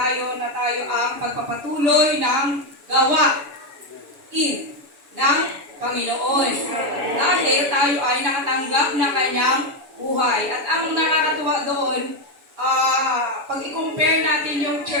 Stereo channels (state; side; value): late; left; 7.0 ms